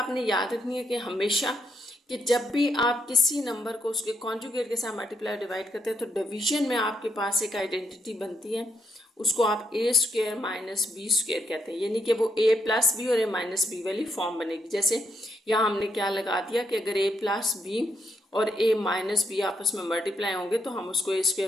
याद रखनी है कि हमेशा कि जब भी आप किसी नंबर को उसके कॉन्जुगेट के साथ मल्टीप्लाई डिवाइड करते हैं तो डिवीजन में आपके पास एक आइडेंटिटी बनती है, उसको आप a² - b² कहते हैं, यानी कि वो a + b और a - b वाली फॉर्म बनेगी। जैसे यहाँ हमने क्या लगा दिया कि अगर a + b और a - b आपस में मल्टीप्लाई होंगे तो हम उसको a²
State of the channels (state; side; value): normal; both; correlation 0.77